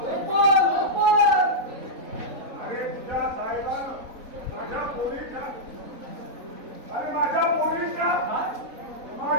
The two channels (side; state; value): left; late; 3.8 ms